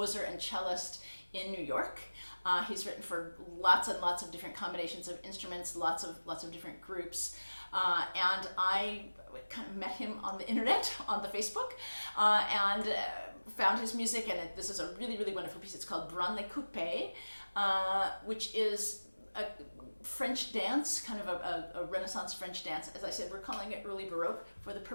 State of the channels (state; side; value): inverted; both; correlation -1.00